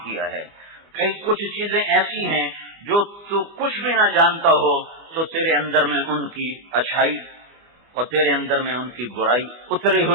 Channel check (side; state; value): left; late; 25 ms